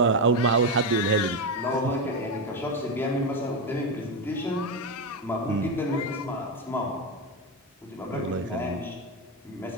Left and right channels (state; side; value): normal; both; correlation 0.11